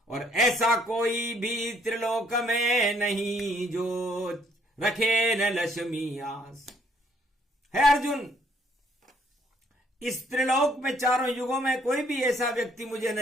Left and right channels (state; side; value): normal; both; correlation 0.66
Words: और ऐसा कोई भी त्रिलोक में नहीं जो रखे न लक्ष्मी आस। है अर्जुन, इस त्रिलोक में चारों युगों में कोई भी ऐसा व्यक्ति मुझे